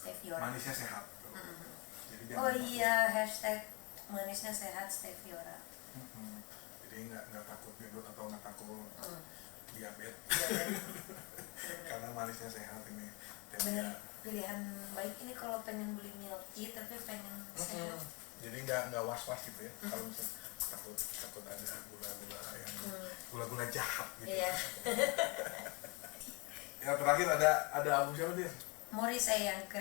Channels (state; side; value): quieter; right; 29.6 dB